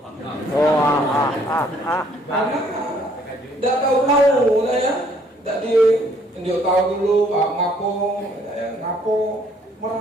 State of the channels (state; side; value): normal; both; correlation 0.64